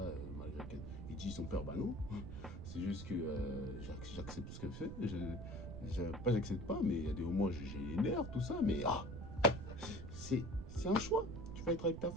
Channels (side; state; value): right; noise; rumble, 8 dB below the sound